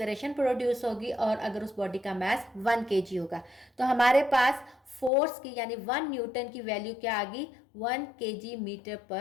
प्रोड्यूस होगी, और अगर उस बॉडी का मास 1 kg होगा तो हमारे पास फोर्स की यानी 1 न्यूटन की वैल्यू क्या आ गई, 1 kg मीटर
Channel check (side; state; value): right; drops out; at 5.1 s